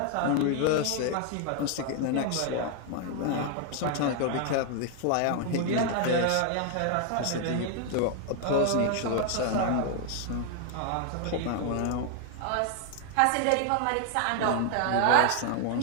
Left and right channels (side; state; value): both; different; correlation 0.00